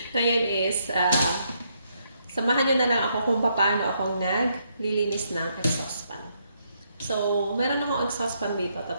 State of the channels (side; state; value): both; inverted; correlation -0.75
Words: ngayon is, samahan nyo na lang ako kung paano ako naglilinis ng exhaust fan. So, meron akong exhaust fan dito,